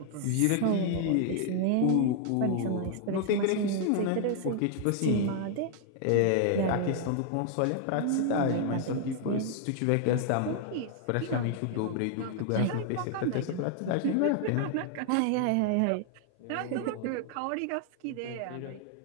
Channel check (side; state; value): both; different; correlation 0.00